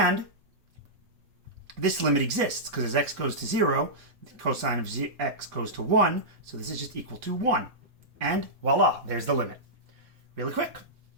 this limit exists because as x goes to 0, the cosine of x goes to 1. So this is just equal to 1. And voila, there's the limit. Really quick,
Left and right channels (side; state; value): left; late; 3.6 ms